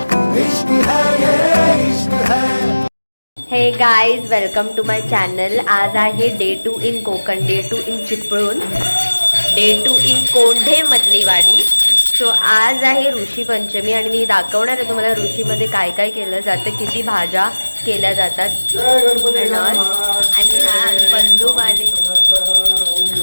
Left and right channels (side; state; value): both; inverted; correlation -1.00